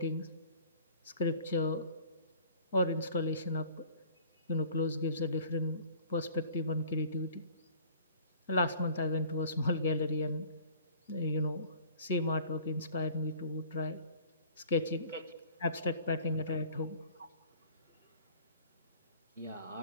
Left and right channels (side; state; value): both; inverted; correlation -0.50